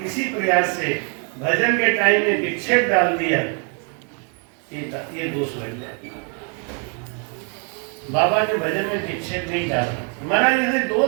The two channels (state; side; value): quieter; left; 37.1 dB